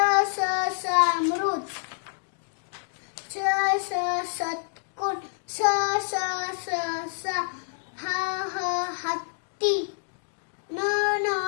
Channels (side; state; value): right; silent; digital silence